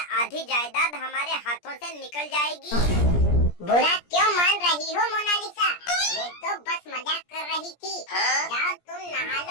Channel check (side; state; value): right; late; 17 ms